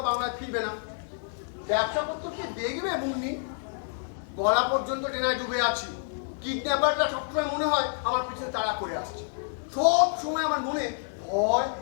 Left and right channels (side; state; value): right; silent; digital silence